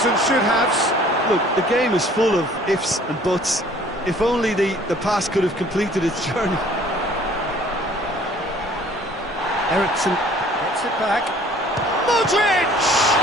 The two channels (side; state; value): both; normal; correlation 0.54